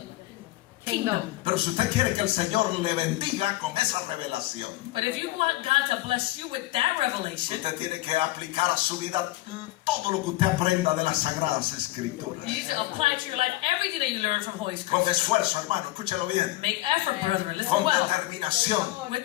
kingdom. Pero si usted quiere que el Señor le bendiga con esa revelación, But if you want God to bless you with that revelation, usted tiene que aplicar a su vida todo lo que usted aprenda de las Sagradas Escrituras. you need to apply to your life everything that you learn from Holy Con Scripture. esfuerzo, hermano, escúchelo bien. Make effort, brethren. Listen Con well. determinación. With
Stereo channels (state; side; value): quieter; right; 17.6 dB